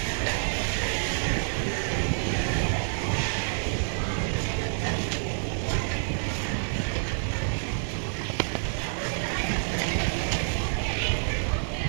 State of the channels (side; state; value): left; silent; 59 dB below the other